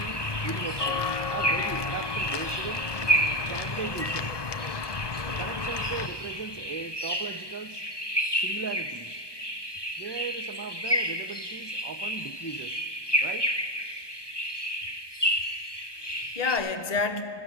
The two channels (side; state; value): right; late; 1.2 ms